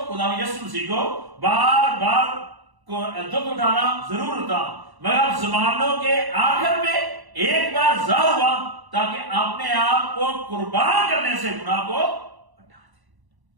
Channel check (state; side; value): late; left; 1.0 ms